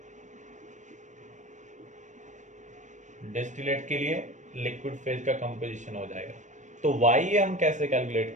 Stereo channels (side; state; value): left; late; 0.35 ms